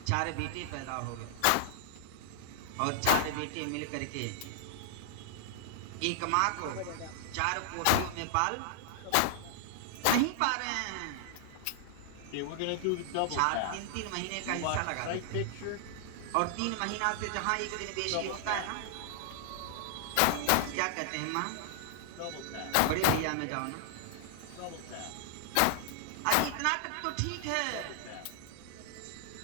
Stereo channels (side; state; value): both; different; correlation -0.01